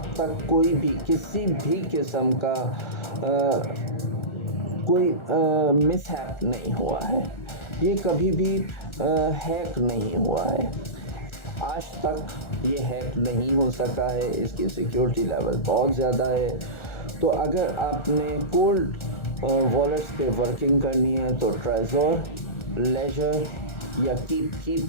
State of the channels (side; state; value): right; late; 1.4 ms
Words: तक कोई भी किसी भी किस्म का कोई मिसहैप नहीं हुआ है। ये कभी भी हैक नहीं हुआ है, आज तक ये हैक नहीं हो सका है। इसकी सिक्योरिटी लेवल बहुत ज़्यादा है। तो अगर आपने कोल्ड वॉलेट्स पे वर्किंग करनी है तो ट्राइज़ोर, लेजर या कीप की